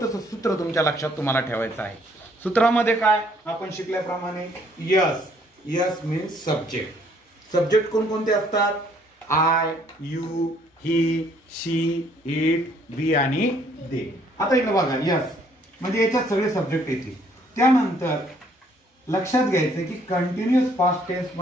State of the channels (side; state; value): both; normal; correlation 0.64